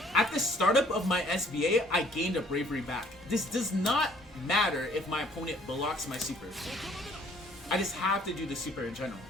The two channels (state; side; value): normal; both; correlation 0.59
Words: At the startup of my SBA, I gained a bravery back. This does not matter if my opponent blocks my super. I just have to do the super in general.